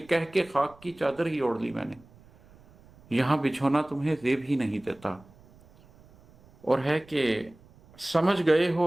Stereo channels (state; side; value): noise; right; rumble, 26 dB below the sound